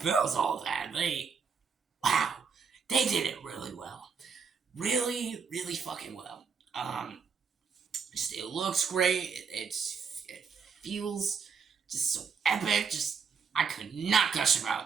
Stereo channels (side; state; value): left; quieter; 5.8 dB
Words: built all that. Wow, they did it really well. Really, really fucking well. Just it looks great. It feels just so epic. Just I could not gush